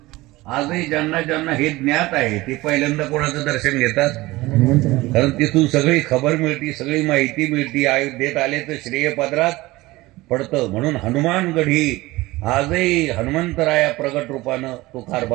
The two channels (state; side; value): quieter; left; 19.6 dB